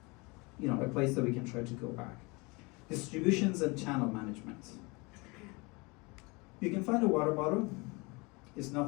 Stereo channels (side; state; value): right; quieter; 27.2 dB